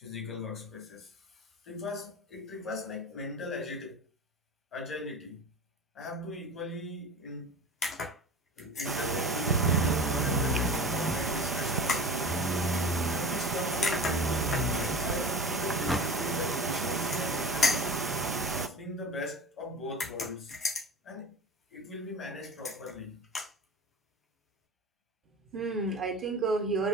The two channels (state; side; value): normal; both; correlation 0.35